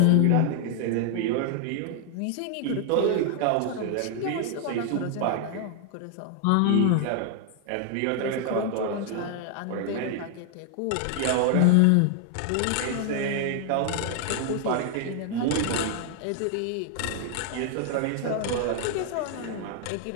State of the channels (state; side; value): different; both; correlation 0.00